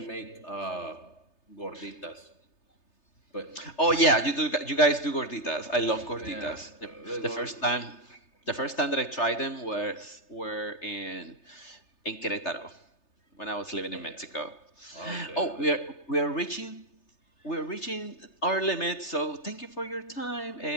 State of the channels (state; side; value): late; right; 3.3 ms